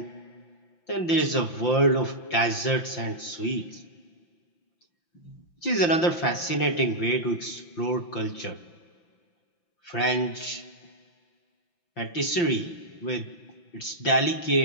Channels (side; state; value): right; late; 5.8 ms